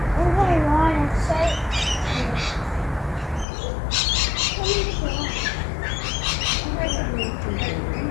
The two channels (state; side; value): drops out; right; at 3.5 s